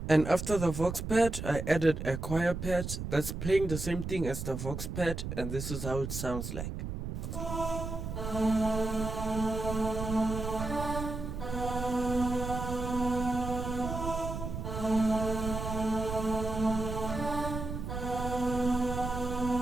And after the Vox Pad, I added a choir pad that's playing the same thing as the Vox Pad, and this is how it sounds like.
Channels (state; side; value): noise; right; rumble, 5 dB below the sound